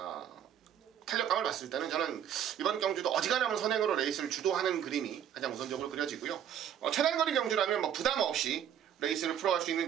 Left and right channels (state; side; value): quieter; left; 9.6 dB